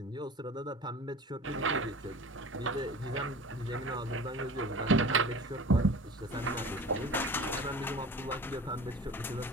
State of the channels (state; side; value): normal; both; correlation 0.40